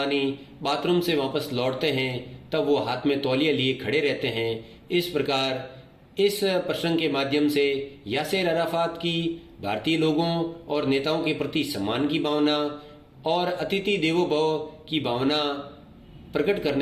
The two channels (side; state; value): both; identical; correlation 1.00